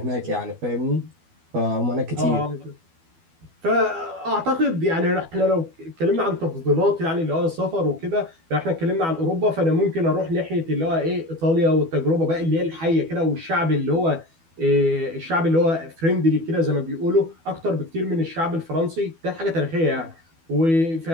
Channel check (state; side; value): late; left; 12 ms